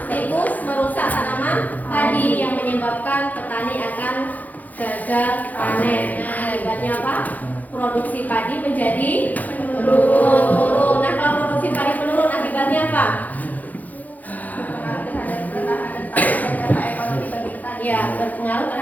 tikus merusak tanaman padi yang menyebabkan petani akan gagal panen. Nah, akibatnya apa? Produksi padi menjadi menurun. Nah, kalau produksi padi menurun akibatnya apa? Ya, berpengaruh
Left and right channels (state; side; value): late; right; 0.080 ms